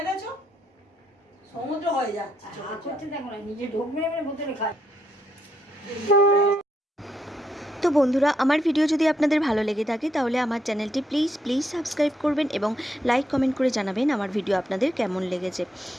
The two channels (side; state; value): both; normal; correlation 0.77